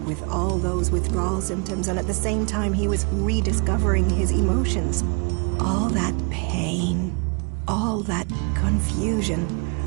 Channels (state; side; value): quieter; left; 35.7 dB